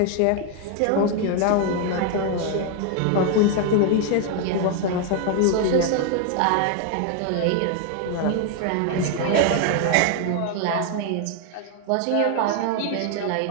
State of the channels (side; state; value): both; different; correlation 0.00